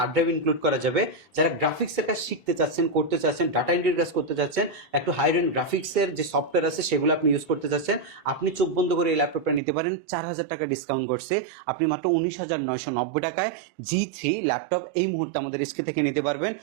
ড্রাইভ ইনক্লুড করা যাবে। যারা গ্রাফিক্সের কাজ শিখতে চাচ্ছেন, করতে চাচ্ছেন, ডাটা এন্ট্রির কাজ করতে চাচ্ছেন, একটু হাই রেন্ড গ্রাফিক্সের যে সফটওয়্যার আছে সেগুলো আপনি ইউজ করতে চাচ্ছেন, আপনি চোখ বন্ধ করে এই ল্যাপটপটা নিতে পারেন। 4,000 টাকা ডিসকাউন্ট করছে, আপনি মাত্র 19,990 টাকায় G3 ল্যাপটপ এই মুহূর্তে আমাদের এসকে থেকে নিতে পারবেন।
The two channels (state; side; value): drops out; left; at 9.6 s